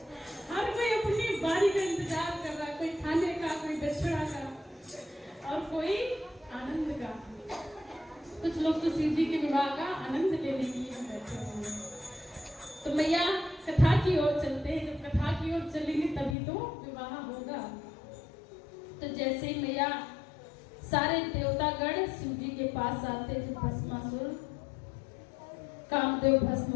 हर कोई अपनी बारी का इंतजार कर रहा है, कोई खाने का, कोई दक्षिणा का और कोई आनंद का। कुछ लोग तो शिव जी के विवाह का आनंद लेने के लिए बैठे हुए हैं। तो मैया कथा की ओर चलते हैं, जब कथा की ओर चलेंगे तभी तो विवाह होगा। तो जैसे ही मैया सारे देवतागण शिव जी के पास आते, जो भस्मासुर कामदेव भस्म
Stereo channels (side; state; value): right; drops out; at 16.4 s